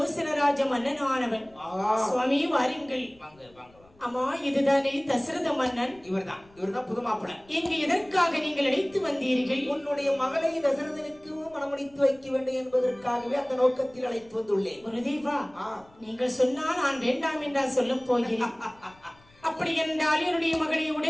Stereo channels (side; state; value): left; noise; rumble, 28 dB below the sound